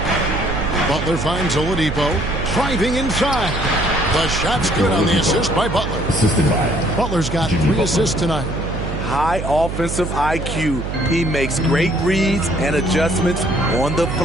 Butler finds Oladipo. Driving inside. The shot's good on the assist by Butler. Assisted by Butler's got 3 assists tonight. high offensive IQ. He makes great reads and adjustments on the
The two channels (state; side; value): noise; right; hum, 5 dB below the sound